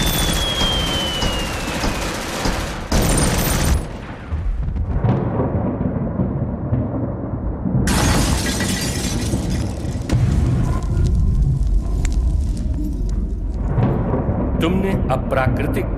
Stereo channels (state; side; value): identical; both; correlation 1.00